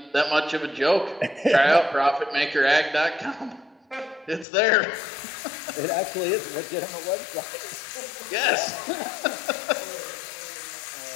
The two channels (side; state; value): right; drops out; at 4.5 s